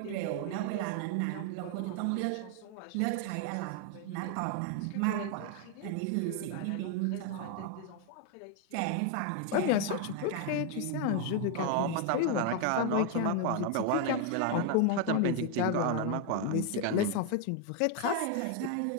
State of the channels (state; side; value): different; both; correlation 0.00